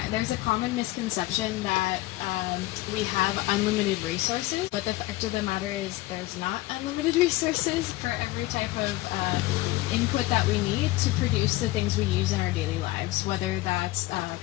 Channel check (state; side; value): quieter; right; 18.6 dB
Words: there's a common misconception that we have unlimited resources, but the fact of the matter is there's not unlimited resources for every type of input that we need to produce the things we use in our daily lives, whether that's